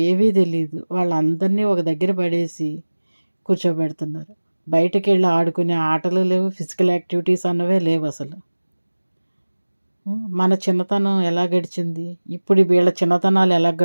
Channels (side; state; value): both; inverted; correlation -1.00